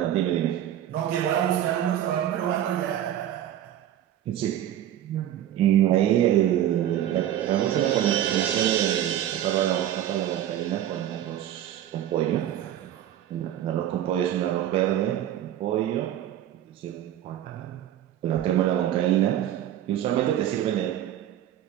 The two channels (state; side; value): quieter; left; 11.6 dB